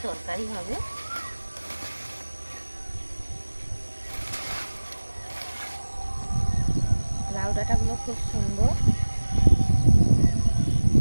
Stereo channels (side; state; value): both; inverted; correlation -1.00